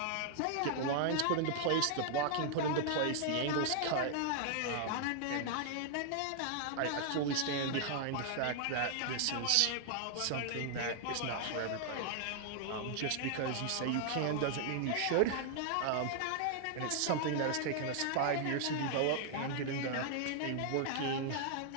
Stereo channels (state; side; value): different; both; correlation 0.00